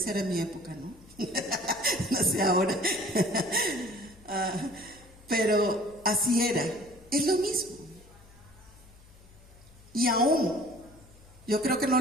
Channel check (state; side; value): noise; left; hum, 24 dB below the sound